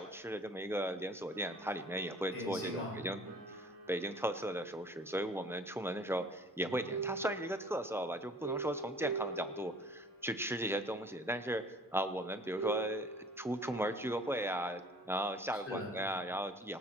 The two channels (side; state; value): both; normal; correlation 0.50